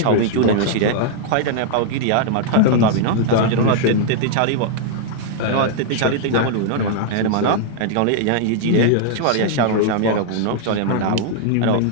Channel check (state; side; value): different; both; correlation -0.01